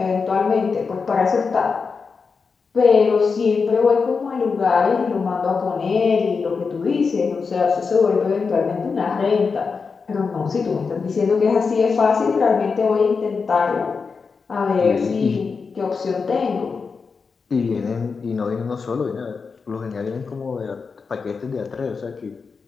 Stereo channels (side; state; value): right; quieter; 5.1 dB